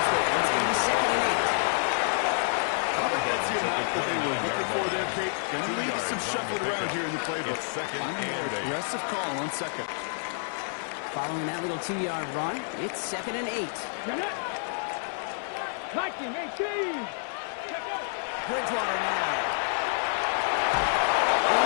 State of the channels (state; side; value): silent; right; digital silence